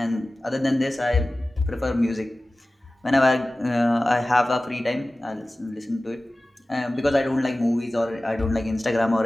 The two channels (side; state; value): both; normal; correlation 0.97